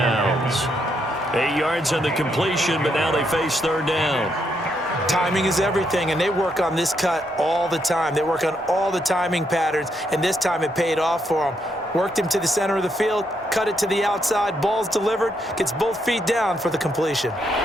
8 yards on the completion, but now they face 3rd down. Timing is everything, and they work on this cut all the time. They work on all the timing patterns, and this time it paid off for them. Worked him to the center of the field, cut it to the outside, ball's delivered, gets both feet down for the completion.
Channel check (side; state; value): both; normal; correlation 0.77